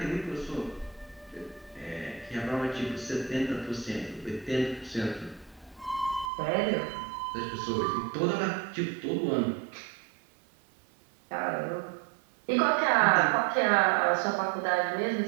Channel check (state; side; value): drops out; left; at 6.3 s